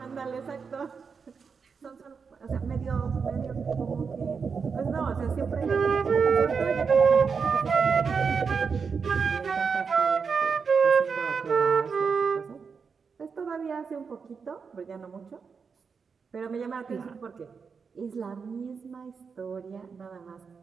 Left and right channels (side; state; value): left; quieter; 5.6 dB